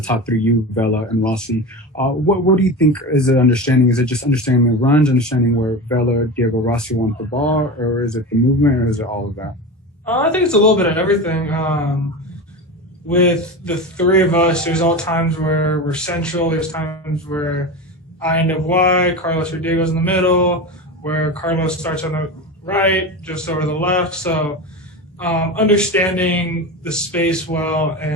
top three, you, Vela, and Rossi. What do you think is the understanding? Is it just understanding the runs, understanding where Vela, Diego, Rossi want the ball, or is it the movement, or is it all of that? I think it's a little bit of everything. With the three of us, there's all times where we're central. There's times where I end up wide, Carlos or Diego's in the middle, where Carlos starts on the right, just over the left. So understanding the space well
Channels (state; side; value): normal; both; correlation 0.25